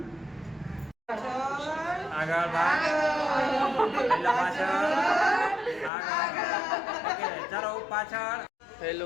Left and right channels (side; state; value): right; drops out; at 5.9 s